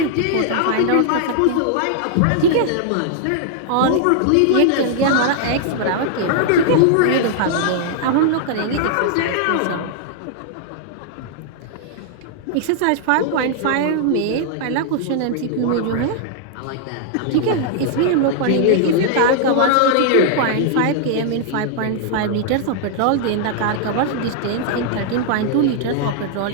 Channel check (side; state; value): both; different; correlation -0.01